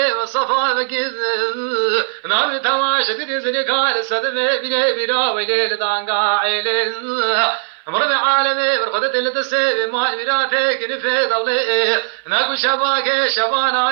وصفا بكيز نار تواش تدي زنيكار سدمي بني بنا ويلي دانقا إلي مرد عالمي برخدت اللي تسيبي مال مراتك نفي ضلي ناكو شباكي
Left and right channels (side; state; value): left; silent; 59 dB below the other